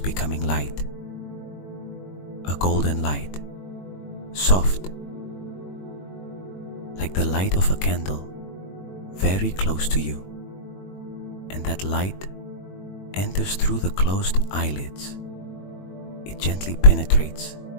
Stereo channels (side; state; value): right; late; 21 ms